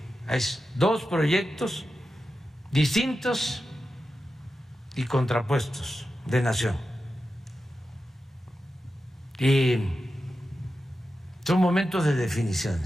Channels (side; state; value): both; normal; correlation 0.91